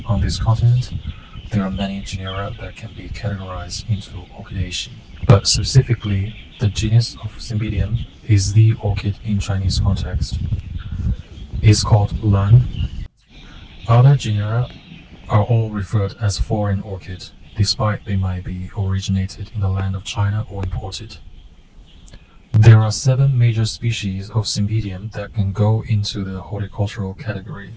on this continent, there are many genera that can be categorized into Orchidaceae. But specifically, the genus of Cymbidium is the orchid in Chinese context. It's called Lan. Other genera are all referred as foreign orchid, despite they might be originated in the land of China or imported. There are 7 major species of Cymbidium that can go into the horticultural category,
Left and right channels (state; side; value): identical; both; correlation 1.00